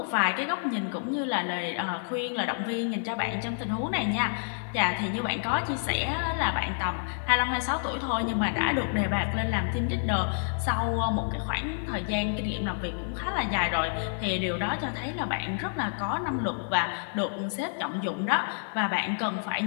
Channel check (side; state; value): right; silent; digital silence